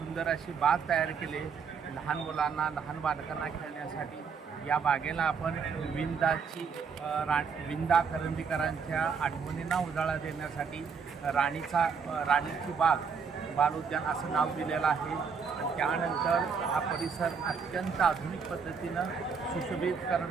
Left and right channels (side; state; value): left; quieter; 5.9 dB